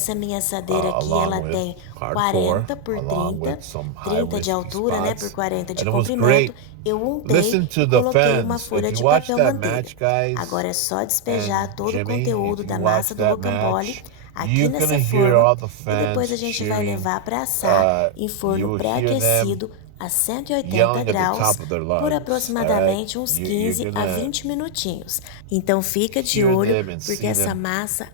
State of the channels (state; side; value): different; both; correlation 0.00